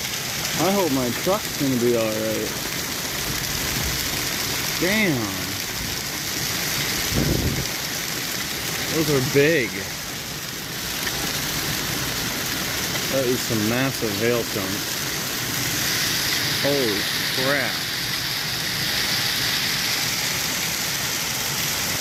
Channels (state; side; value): identical; both; correlation 1.00